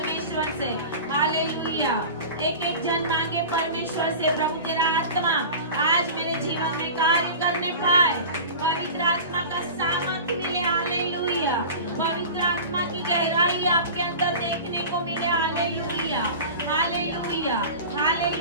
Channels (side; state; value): both; inverted; correlation -0.35